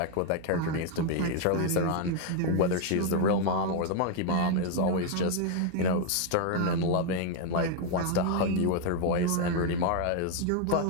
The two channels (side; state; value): both; different; correlation 0.01